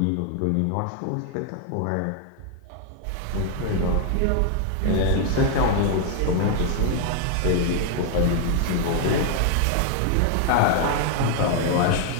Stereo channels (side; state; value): both; different; correlation 0.00